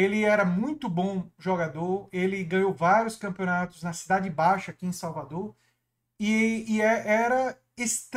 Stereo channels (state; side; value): identical; both; correlation 1.00